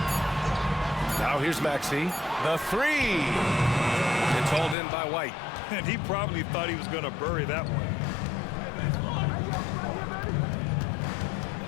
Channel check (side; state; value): right; drops out; at 4.8 s